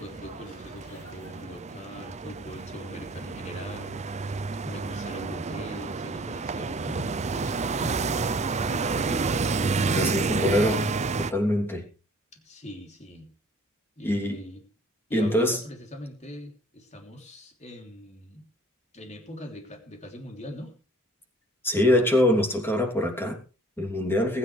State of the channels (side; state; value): both; normal; correlation 0.53